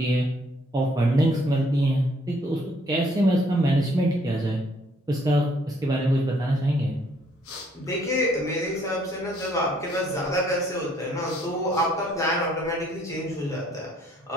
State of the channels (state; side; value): normal; both; correlation 0.65